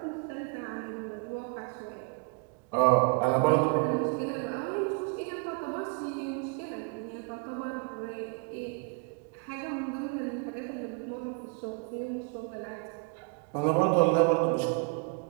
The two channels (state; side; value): quieter; left; 35.1 dB